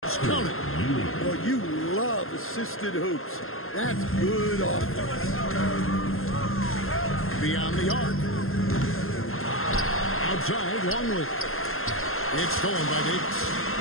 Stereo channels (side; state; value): right; late; 0.61 ms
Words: Count it. Well, you love assisted hoops. That's good offense. Beyond the arc. Outside, Longley. It's stolen by Davis.